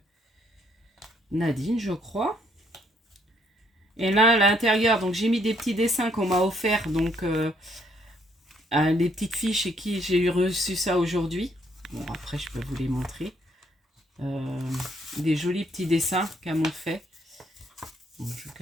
Nadine, je crois. Et là, à l'intérieur, donc j'ai mis des petits dessins qu'on m'a offert. Donc, les petites filles chez qui j'ai reçu ça aujourd'hui. Bon, après, je peux vous les montrer. Des jolis petits dessins qu'elles m'ont fait. Bon, je vais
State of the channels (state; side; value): normal; both; correlation 0.69